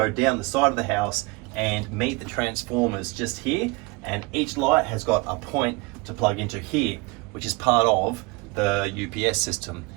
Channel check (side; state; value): left; quieter; 26.9 dB